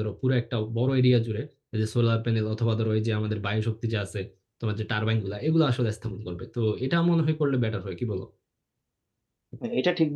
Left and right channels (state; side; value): identical; both; correlation 1.00